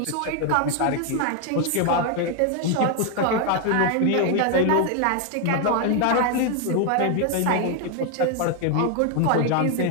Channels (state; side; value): different; both; correlation 0.01